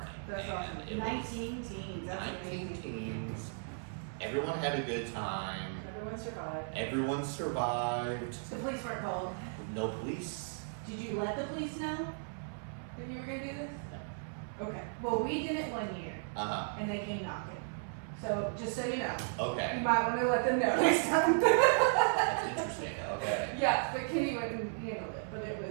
That's and awesome. it was 19 teens, that's 19 amazing. teams. Everyone had a good time. Everyone survived. Everyone survived. The police weren't called. No police. Did you let the police know that you were gonna do this? No. Okay. Well, we did it one year, Uh and they came knocking. So just so you know, huh. you Okay. might want to let them know next time. That's interesting. Okay. Yeah, but Kenny wouldn't handle it, but it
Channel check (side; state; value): left; silent; 54 dB below the other